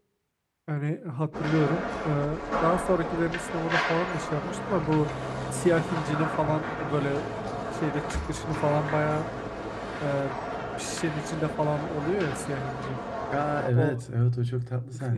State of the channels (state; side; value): identical; both; correlation 1.00